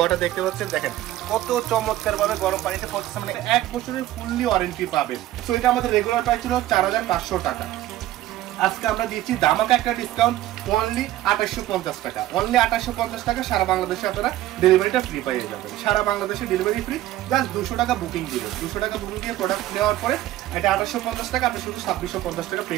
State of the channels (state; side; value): quieter; left; 14.5 dB